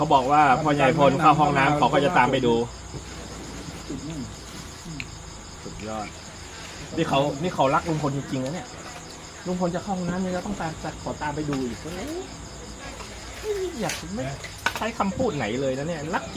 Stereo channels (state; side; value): identical; both; correlation 1.00